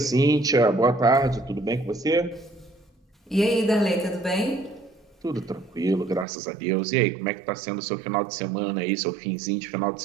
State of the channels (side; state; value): left; drops out; at 6.2 s